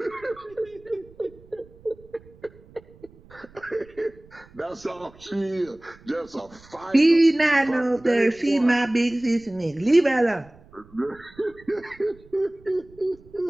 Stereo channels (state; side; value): noise; right; rumble, 25 dB below the sound